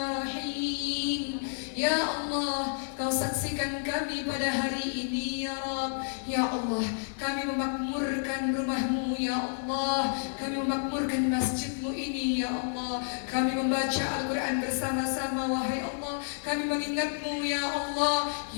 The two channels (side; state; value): right; silent; digital silence